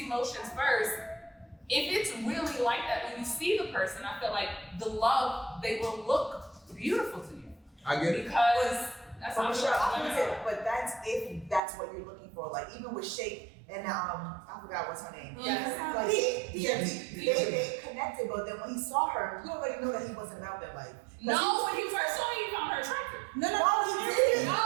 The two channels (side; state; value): left; drops out; at 11.6 s